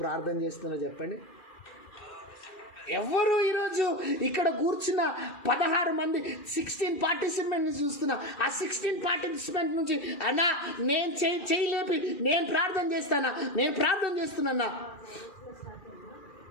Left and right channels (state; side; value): late; right; 2.4 ms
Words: ప్రార్థన చేస్తున్నారో చెప్పండి. ఎవరు ఈరోజు ఇక్కడ కూర్చున్న 16 మంది 16 పార్టిసిపెంట్ని చూస్తున్నా. ఆ 16 పార్టిసిపెంట్ నుంచి అన్నా నేను చేయలేపి నేను ప్రార్థన చేస్తున్నా.